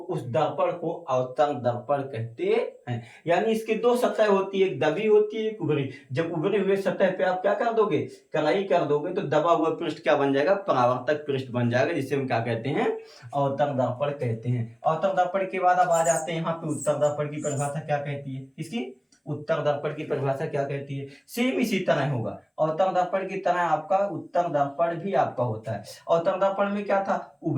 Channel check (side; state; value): both; identical; correlation 1.00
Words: दर्पण को अवतल दर्पण कहते हैं। यानी इसकी दो सतह होती है, एक दबी होती है, एक उभरी। जब उभरे हुए सतह पे आप क्या कर दोगे, कलाई कर दोगे, तो दबा हुआ पृष्ठ क्या बन जाएगा, परावर्तक पृष्ठ बन जाएगा, जिसे हम क्या कहते हैं, अवतल दर्पण कहते हैं। अवतल दर्पण के बाद अब आ जाते हैं यहाँ पे उत्तल दर्पण की परिभाषा क्या कहती है, इसकी उत्तर दर्पण की परिभाषा क्या कहती है। सेम इसी तरह होगा, अवतल दर्पण की तरह आपका उत्तर दर्पण भी आपका होता है। अवतल दर्पण में क्या था,